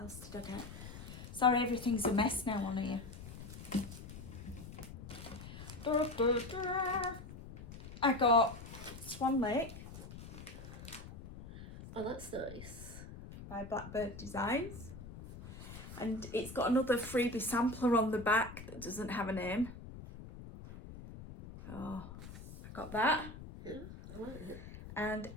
did I get? Sorry, everything's a mess now on here. I got Swan Lake Oh, that's nice. by Blackbird Designs. And it's got another freebie sampler on the back that doesn't have a name. Oh, I got that. Yeah, I like it. And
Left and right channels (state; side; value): noise; left; rumble, 13 dB below the sound